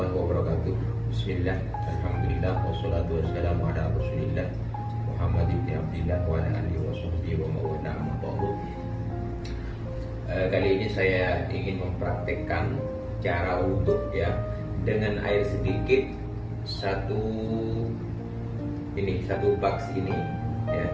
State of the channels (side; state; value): both; identical; correlation 1.00